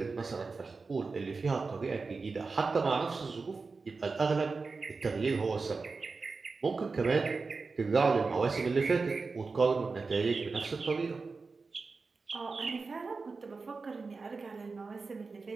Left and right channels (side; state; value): left; quieter; 4.3 dB